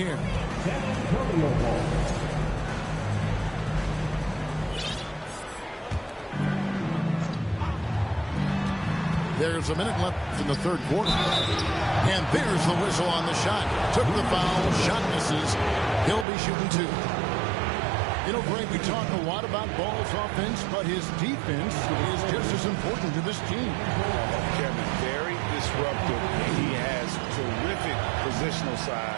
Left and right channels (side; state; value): left; drops out; at 16.2 s